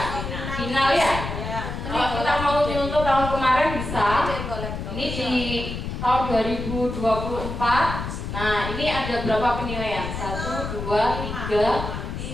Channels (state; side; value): noise; left; rumble, 6 dB below the sound